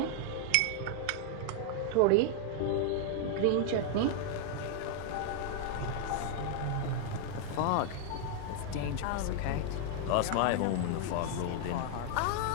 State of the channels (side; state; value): both; different; correlation -0.01